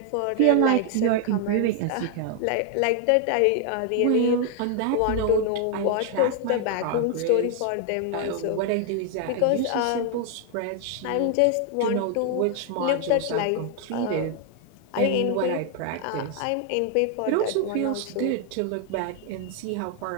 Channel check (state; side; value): different; both; correlation 0.00